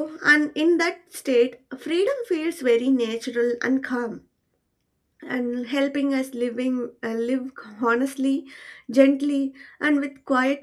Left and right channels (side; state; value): both; identical; correlation 1.00